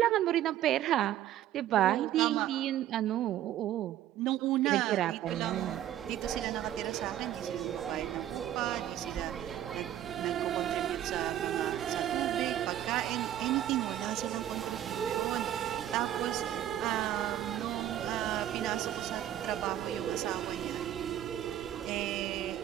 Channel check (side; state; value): left; quieter; 12.0 dB